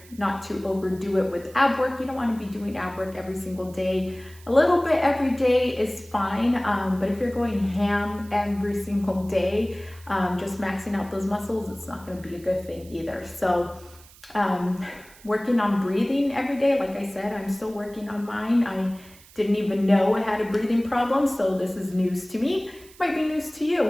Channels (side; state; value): right; noise; hiss, 23 dB below the sound